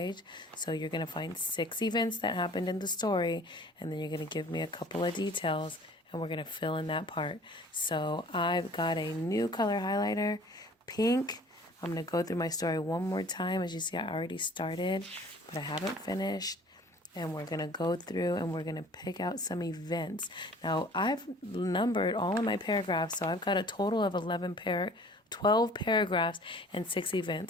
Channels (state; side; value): normal; both; correlation 0.50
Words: So you're going to find 6 events that happened in the story, and then you're going to give me a couple of details, and we're going to fill in that part. So I've got a new color highlighter, pink. I'm going to go through my story one more time. As you see, I already started, but I haven't finished. And we're going to go through and we're going to pick out some events. Now, I've numbered all of my paragraphs, so I've got a total of 12 paragraphs and 6